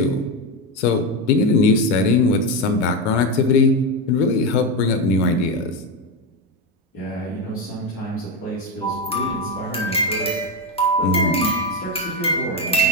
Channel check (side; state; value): both; normal; correlation 0.12